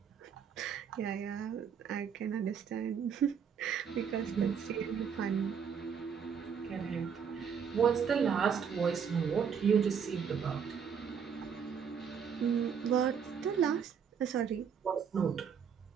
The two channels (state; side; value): quieter; left; 7.1 dB